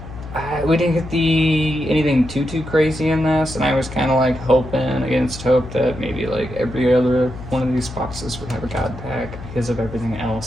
We didn't get anything too crazy in this, and I was kind of like hoping against hope that maybe like every other one of these boxes would have a god pack because of everything else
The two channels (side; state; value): left; noise; hum, 13 dB below the sound